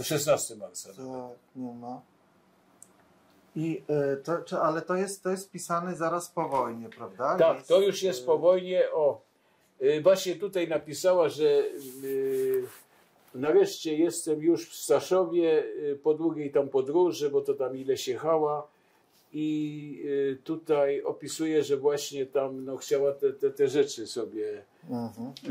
16 marca. Tak, nie ma. I ale to jest pisane zaraz po wojnie, prawda? Tak, to już jest po wojnie. Właśnie tutaj napisała, że nareszcie jestem już w Staszowie po długiej tam podróży, bo to tam ileś jechała. I tutaj opisuje, że właśnie tam no, chciała te rzeczy sobie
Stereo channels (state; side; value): identical; both; correlation 1.00